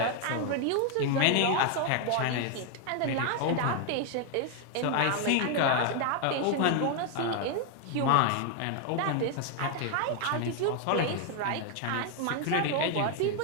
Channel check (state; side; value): different; both; correlation 0.00